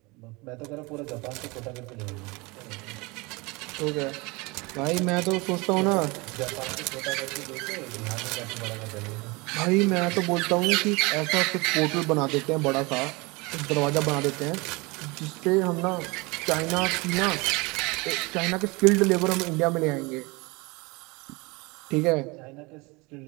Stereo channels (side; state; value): left; quieter; 25.6 dB